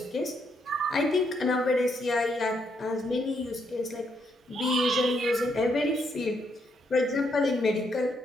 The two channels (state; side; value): normal; both; correlation 0.76